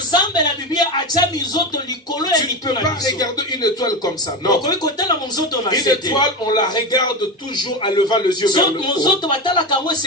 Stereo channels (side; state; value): both; normal; correlation 0.18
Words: peux pas regarder une étoile comme ça. Non. Une étoile, on la regarde toujours en levant les yeux vers le haut.